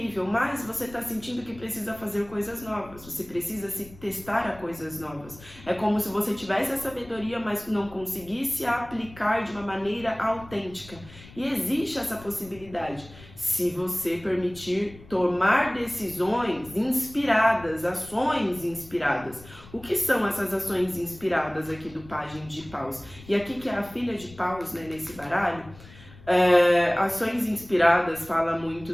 mas você está sentindo que precisa fazer coisas novas, você precisa se testar a coisas novas. É como se você tivesse a sabedoria, mas não conseguisse aplicar de uma maneira autêntica. E existe essa possibilidade, se você permitir tomar decisões inspiradas, ações inspiradas. O que são essas ações inspiradas aqui do pajem de paus? E aqui que é a filha de paus, né, nesse baralho, ações inspiradas fala muito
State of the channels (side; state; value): left; noise; rumble, 20 dB below the sound